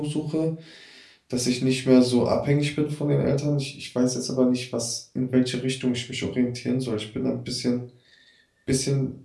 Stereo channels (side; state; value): both; identical; correlation 1.00